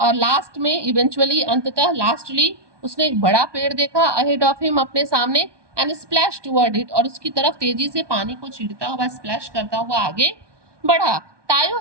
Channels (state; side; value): late; left; 1.2 ms